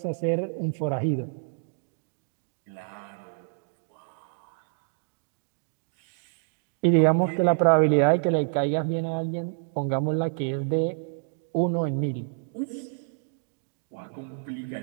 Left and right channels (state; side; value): silent; left; digital silence